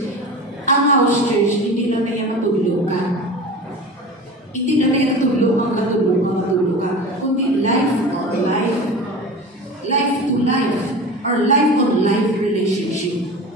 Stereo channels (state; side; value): normal; both; correlation 0.33